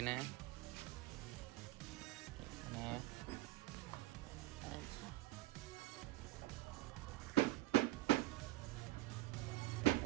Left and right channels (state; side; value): quieter; left; 17.2 dB